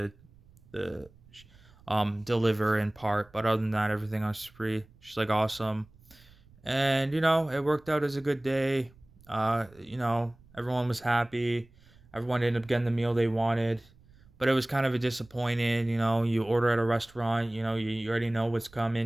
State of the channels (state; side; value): noise; right; rumble, 27 dB below the sound